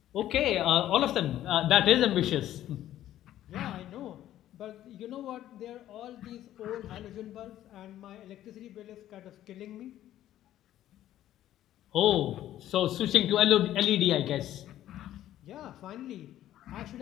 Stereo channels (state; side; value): quieter; right; 12.7 dB